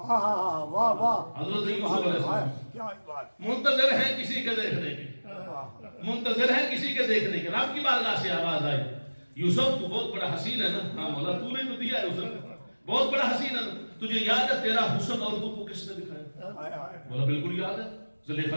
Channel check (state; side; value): inverted; both; correlation -1.00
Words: حضرت یوسف علیہ السلام منتظر ہیں کسی کے دیکھنے کے، منتظر ہیں کسی کے دیکھنے کے. رب کی بارگاہ سے آواز آئی، یوسف تو بہت بڑا حسین ہے نا. ہاں مولا تو نے تو دیا ہے یوسف، بہت بڑا حسین ہے نا، تجھے یاد ہے تیرا حسن اور تو کو کس نے دکھایا؟ بولا بالکل یاد ہے، زلیخا